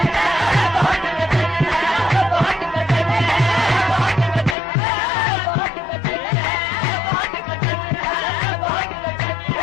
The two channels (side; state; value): right; drops out; at 4.5 s